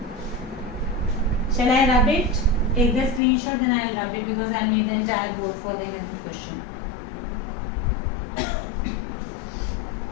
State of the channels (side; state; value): right; drops out; at 3.2 s